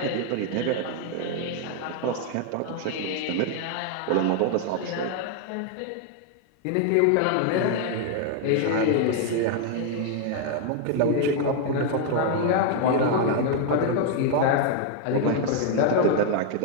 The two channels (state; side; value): different; both; correlation 0.00